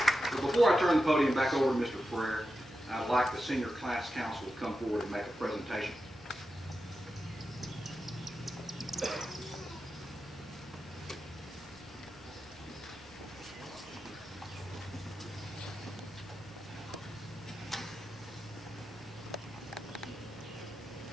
But before I turn the podium back over to Mr. Frere, I'd like the Senior Class Council to come forward and make a presentation.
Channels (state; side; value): normal; both; correlation 0.90